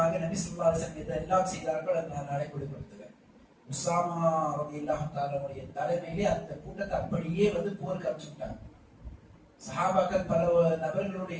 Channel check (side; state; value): both; identical; correlation 1.00